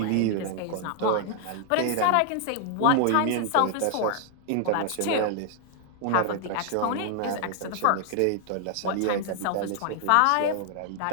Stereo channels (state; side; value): different; both; correlation 0.00